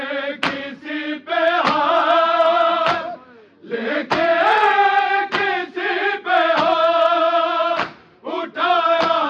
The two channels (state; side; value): identical; both; correlation 1.00